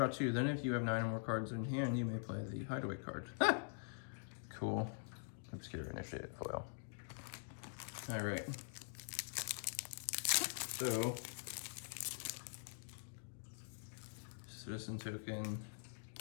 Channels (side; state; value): right; silent; digital silence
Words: 2. Then if you have 9 or more cards in hand, you may play the hideaway card. Cool. Obscura Initiate foil. All right. So, citizen token.